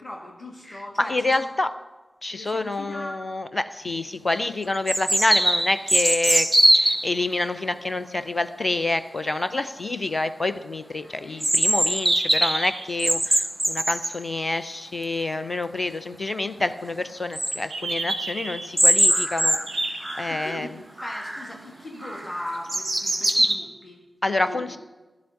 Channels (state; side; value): normal; both; correlation 0.96